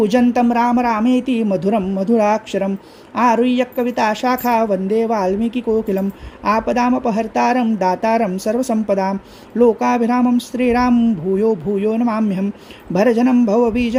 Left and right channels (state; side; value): identical; both; correlation 1.00